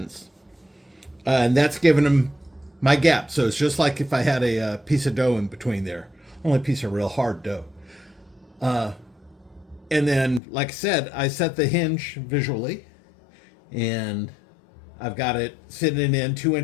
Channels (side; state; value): right; drops out; at 10.4 s